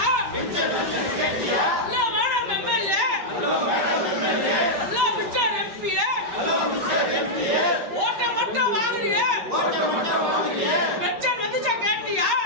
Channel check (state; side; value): late; left; 5.3 ms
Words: மேடம் எம்எல்ஏ பிச்சர் எம்பி ஓட்ட மட்டும் வாங்குறிய பென்ஷன் வந்து கேட்டியா?